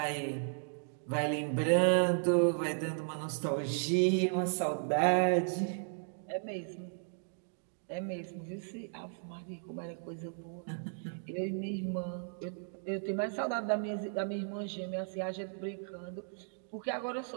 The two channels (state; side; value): silent; left; digital silence